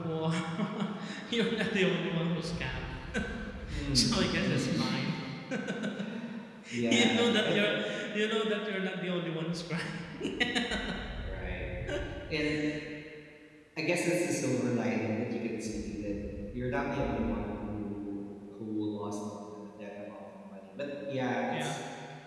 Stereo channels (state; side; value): identical; both; correlation 1.00